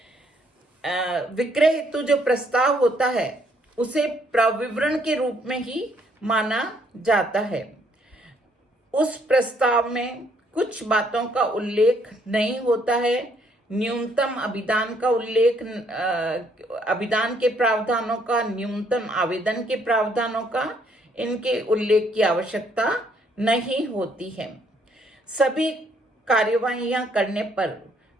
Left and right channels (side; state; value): both; normal; correlation 0.68